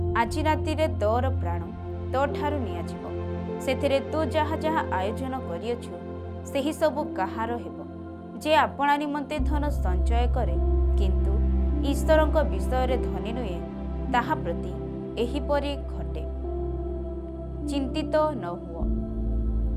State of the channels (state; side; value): identical; both; correlation 1.00